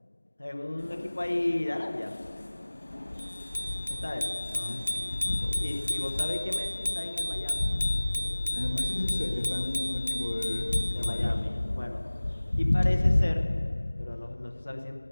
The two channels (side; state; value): both; inverted; correlation -1.00